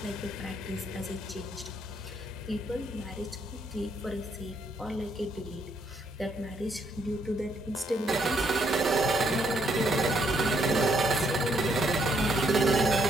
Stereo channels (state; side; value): normal; both; correlation 0.73